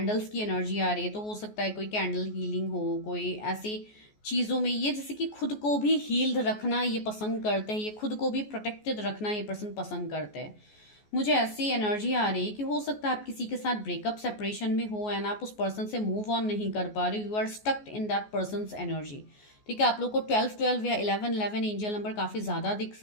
की एनर्जी आ रही है, तो हो सकता है कोई कैंडल हीलिंग हो, कोई ऐसी चीज़ों में ये जैसे कि खुद को भी हील्ड रखना ये पसंद करते हैं, ये खुद को भी प्रोटेक्टेड रखना ये पर्सन पसंद करते हैं। मुझे ऐसी एनर्जी आ रही है कि हो सकता है आप किसी के साथ ब्रेकअप सेपरेशन में हो, एंड आप उस पर्सन से मूव ऑन नहीं कर पा रहे, you are stucked in that person's energy, ठीक है। आप लोग को 12-12 या 11-11 एंजल नंबर काफ़ी ज़्यादा दिख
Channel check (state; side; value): late; right; 14 ms